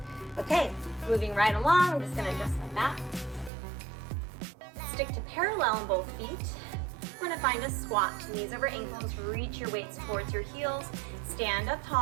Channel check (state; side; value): drops out; left; at 3.5 s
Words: Okay, moving right along. I'm just gonna adjust my back. Stick to parallel in both feet. We're gonna find a squat. Knees over ankles, reach your weights towards your heels. Stand up